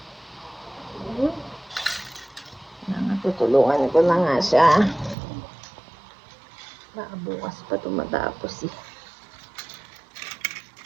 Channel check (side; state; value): left; drops out; at 5.2 s